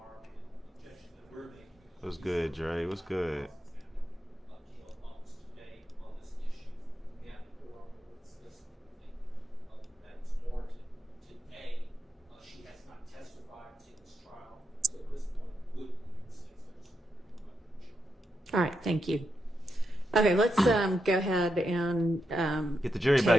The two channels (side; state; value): both; normal; correlation 0.84